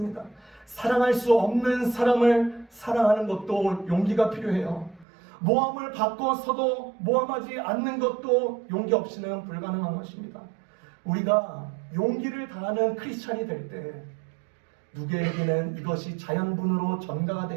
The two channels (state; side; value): drops out; left; at 5.1 s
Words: 사랑할 수 없는 사람을 사랑하는 것도 용기가 필요해요. 모함을 받고서도 모함하지 않는 것도 용기 없이는 불가능한 것입니다. 우리가 용기를 다하는 크리스찬이 될 때 누구에게는 이것이 자연분으로 전가가